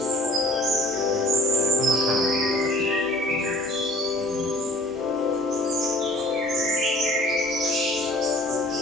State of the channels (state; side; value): normal; both; correlation 0.50